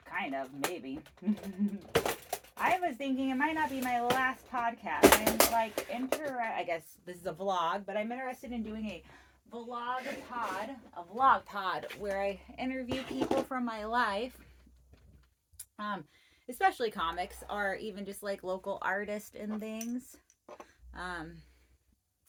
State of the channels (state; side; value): identical; both; correlation 1.00